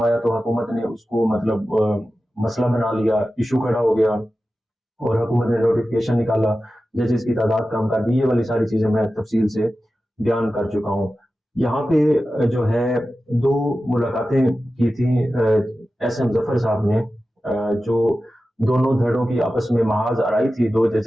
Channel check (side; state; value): both; normal; correlation 0.94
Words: आया तो हुकूमत ने उसको मतलब मसला बना लिया, इशू खड़ा हो गया और हुकूमत ने नोटिफिकेशन निकाला, जजेस की तादाद कम कर दी। ये वाली सारी चीजें मैं तफसील से बयान कर चुका हूँ। यहाँ पे जो है 2 मुलाकातें की थी एस.एम. जफर साहब ने, जो दोनों धड़ों की आपस में महाज आराई थी, 2